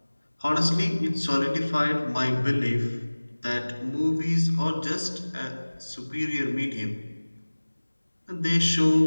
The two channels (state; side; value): inverted; both; correlation -1.00